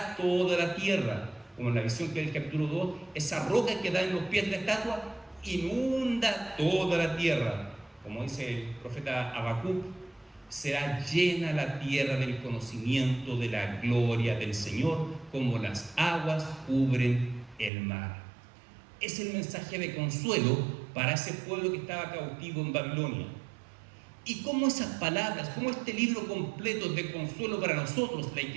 toda la tierra. Como en la visión que del capítulo 2, esa roca que da en los pies de la estatua inunda toda la tierra. Como dice el profeta Habacuc, será llena la tierra del conocimiento de la gloria del Señor, como las aguas cubren el mar. Es el mensaje de consuelo para ese pueblo que estaba cautivo en Babilonia. Y cómo esas palabras, cómo este libro completo es de consuelo para nosotros, la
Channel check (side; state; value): left; drops out; at 17.7 s